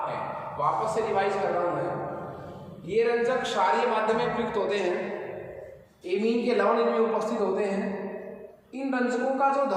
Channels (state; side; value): identical; both; correlation 1.00